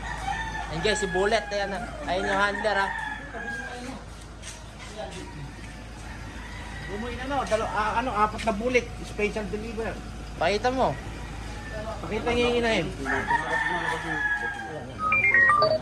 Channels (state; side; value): identical; both; correlation 1.00